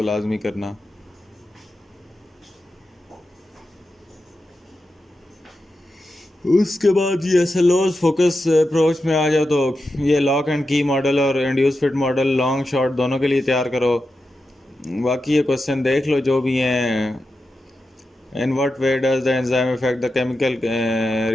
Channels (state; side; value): normal; both; correlation 0.90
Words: लाजमी करना। उसके बाद ये एसएलओज फोकस अप्रोच में आ जाओ तो ये लॉक एंड की मॉडल और induce fit model long short दोनों के लिए तैयार करो। बाकी ये क्वेश्चन देख लो जो भी हैं। In what way does the enzyme effect the chemical